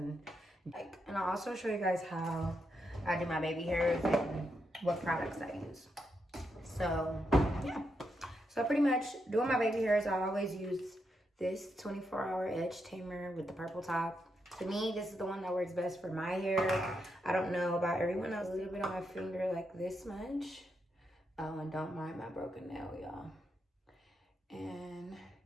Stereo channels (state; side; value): normal; both; correlation 0.82